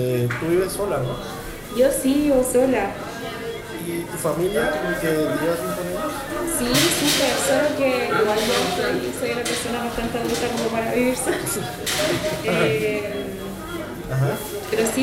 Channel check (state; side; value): identical; both; correlation 1.00